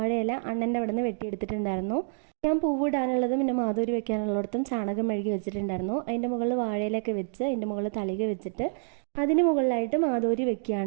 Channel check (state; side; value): silent; left; digital silence